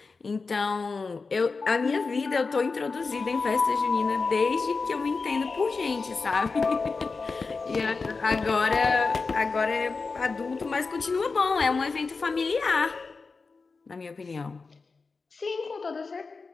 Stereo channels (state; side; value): quieter; right; 4.3 dB